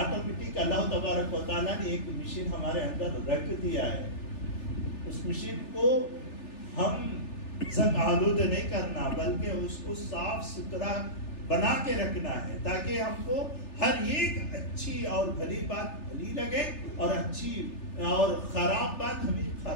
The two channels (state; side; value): late; right; 3.4 ms